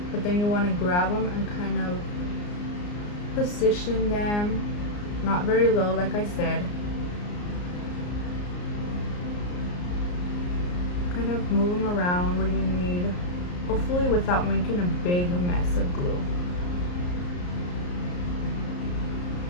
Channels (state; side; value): late; right; 34 ms